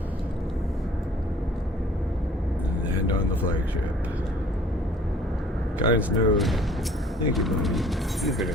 Guidance node. Thank you, buddy. You've been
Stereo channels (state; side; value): normal; both; correlation 0.54